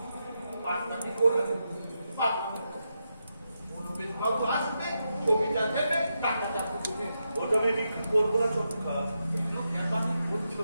পাটনাটি করবে, পাটনাটি মনোবেশ বাবু আসবে, ছবিটা দেবে, টাকাটা দেবে। ওটা আমি বিক্রি করবো না চটকা। করছো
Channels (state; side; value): inverted; both; correlation -0.85